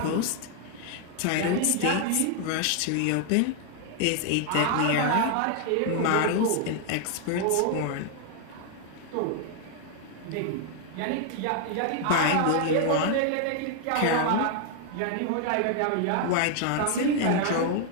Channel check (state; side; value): different; both; correlation 0.00